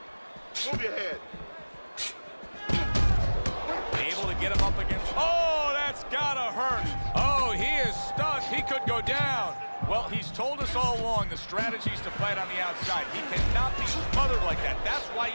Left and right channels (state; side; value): inverted; both; correlation -1.00